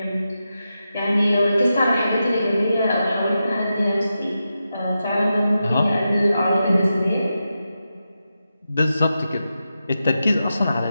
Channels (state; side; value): inverted; both; correlation -0.89